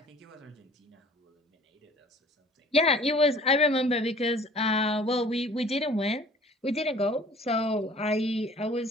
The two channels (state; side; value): normal; both; correlation 0.50